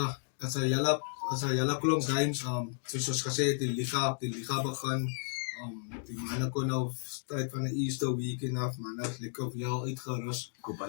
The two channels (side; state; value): right; silent; digital silence